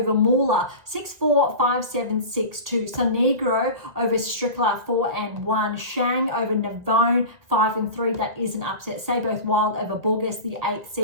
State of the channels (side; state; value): left; late; 1.9 ms